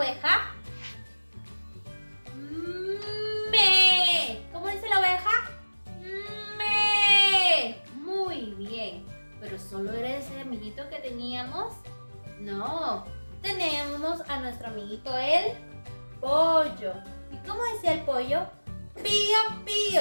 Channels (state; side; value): inverted; both; correlation -1.00